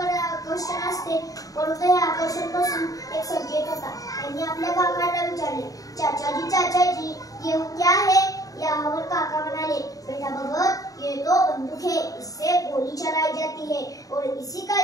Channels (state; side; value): late; right; 0.17 ms